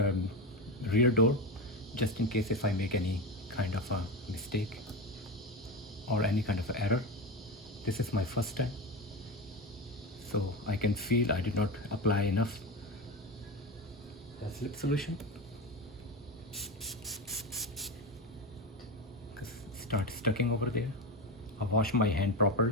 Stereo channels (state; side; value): normal; both; correlation 0.19